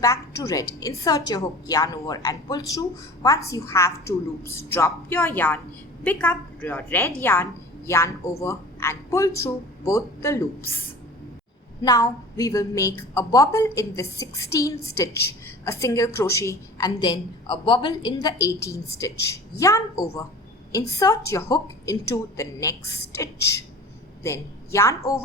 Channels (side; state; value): both; normal; correlation 0.41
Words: to red. Insert your hook, yarn over and pull through. Once you have 2 loops, drop your yarn, pick up your red yarn, yarn over and pull through both the loops. Now we will make a bobble in the 16th stitch, a single crochet and then a bobble in the 18th stitch. Yarn over, insert your hook into the next stitch. Then yarn